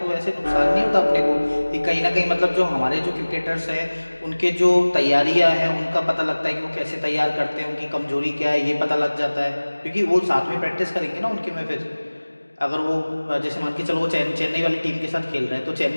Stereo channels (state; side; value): inverted; both; correlation -1.00